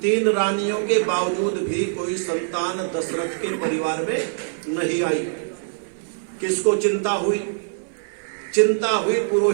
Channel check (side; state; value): left; silent; 59 dB below the other